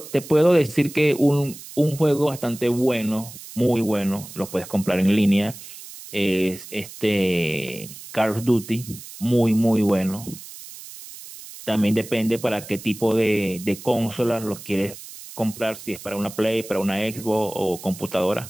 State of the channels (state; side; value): noise; right; hiss, 15 dB below the sound